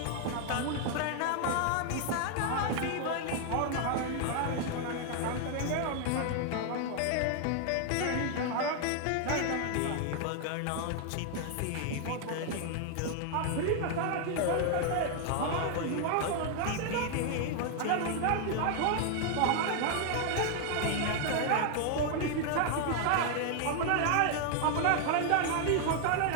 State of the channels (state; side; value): different; both; correlation 0.00